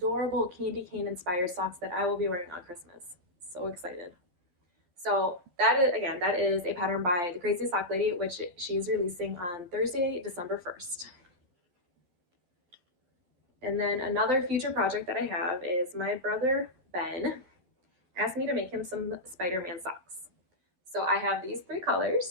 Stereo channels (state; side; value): late; left; 12 ms